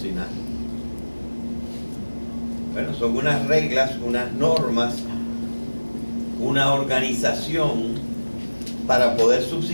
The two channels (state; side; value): inverted; both; correlation -1.00